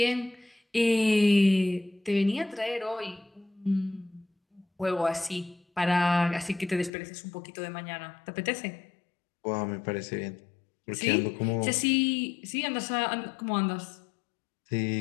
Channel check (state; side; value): drops out; right; at 6.9 s